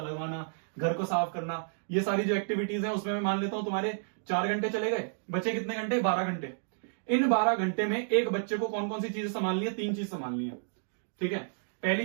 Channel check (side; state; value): left; silent; digital silence